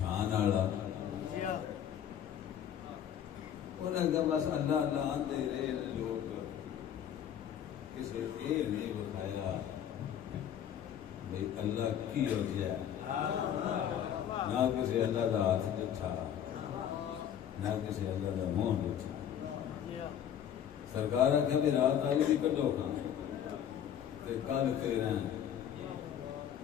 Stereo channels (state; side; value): quieter; right; 9.6 dB